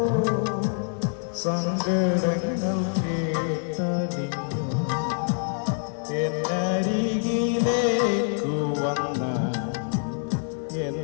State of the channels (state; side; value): silent; right; 58 dB below the other